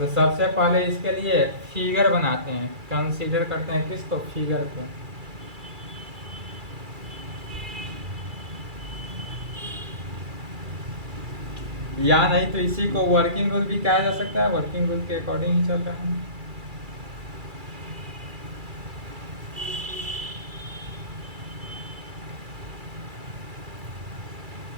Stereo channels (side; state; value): left; late; 2.3 ms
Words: सबसे पहले इसके लिए फिगर बनाते हैं, कंसीडर करते हैं किसको, फिगर को। या नहीं तो इसी को वर्किंग रूल भी कहा जा सकता है, वर्किंग रूल के अकॉर्डिंग ही चल रहा है।